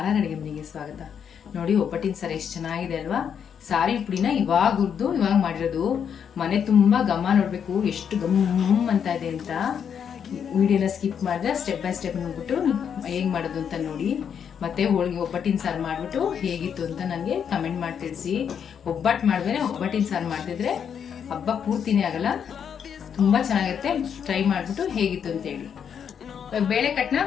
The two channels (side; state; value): right; quieter; 7.8 dB